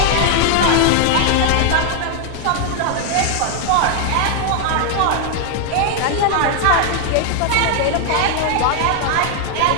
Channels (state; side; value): different; both; correlation 0.00